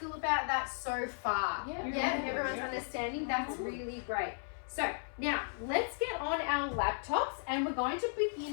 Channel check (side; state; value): right; silent; 54 dB below the other